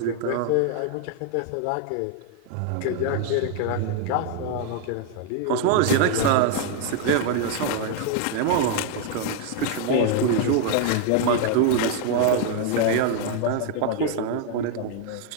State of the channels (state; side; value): different; both; correlation 0.00